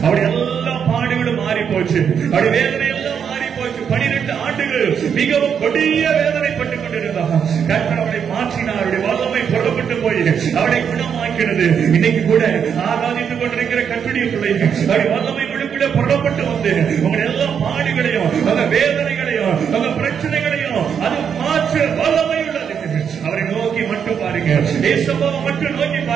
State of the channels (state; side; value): quieter; left; 7.5 dB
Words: அவருடைய எல்லா பாடுகளும் மாறி போச்சு. அவருடைய வேதனை எல்லாம் மாறி போச்சு. 12 ஆண்டுகள் மிகவும் கொடிய வேதனைப்பட்டுக் கொண்டிருந்தார். கர்த்தர் அவரை மாற்றினார். அவருடைய வல்லமை புறப்பட்டு போய் அவரை குணமாக்கினது. இன்னைக்கு கூட ஆராதித்துக் கொண்டிருக்கிற கர்த்தருடைய பிள்ளைகள் அவருடைய வல்லமை கூட புறப்பட்டு வந்து உங்களுடைய எல்லா பாடுகளையும் அந்த வேதனைகளையும் அந்த பிரச்சனைகளையும் அது மாற்ற வல்லமை உள்ளது. அவரை நோக்கி மட்டும் பாருங்க. ஏசப்பாவை மட்டும் நோக்கி